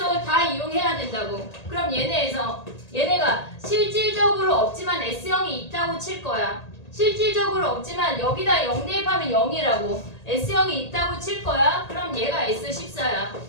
다 이용해야 된다고. 그럼 얘네가 실질적으로 없지만 S형이 있다고 칠 거야. 실질적으로 없지만 여기다 0 대입하면 0이라고. S형이 있다고 칠 거야. 그럼 얘가 S14야.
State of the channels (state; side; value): late; right; 1.8 ms